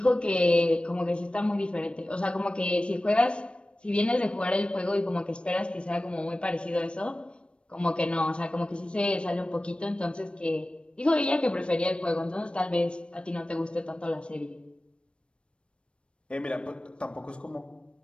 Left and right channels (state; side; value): late; right; 0.058 ms